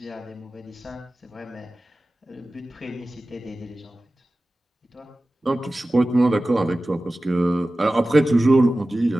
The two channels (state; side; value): normal; both; correlation 0.96